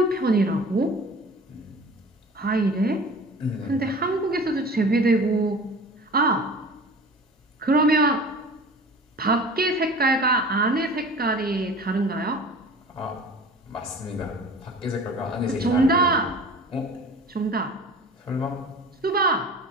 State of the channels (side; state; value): both; normal; correlation 0.40